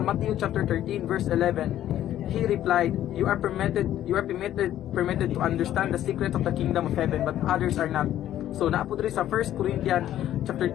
Matthew chapter 13 verse 11. He replied, you are permitted to understand the secrets of the kingdom of heaven, but others are not. So naapod rin sa 1 Corinthians chapter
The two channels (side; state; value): right; quieter; 12.2 dB